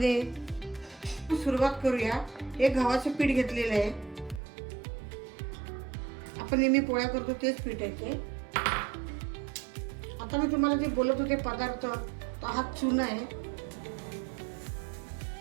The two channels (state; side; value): drops out; left; at 4.4 s